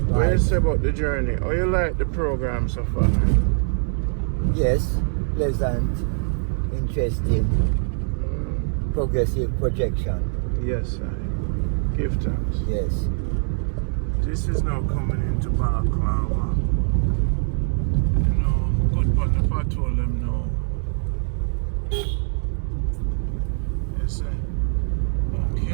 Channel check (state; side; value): silent; left; digital silence